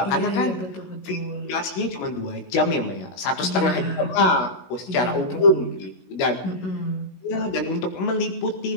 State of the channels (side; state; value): right; late; 16 ms